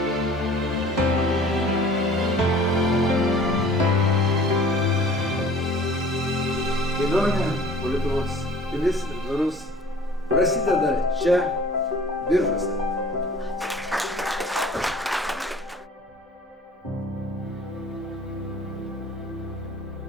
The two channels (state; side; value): normal; both; correlation 0.48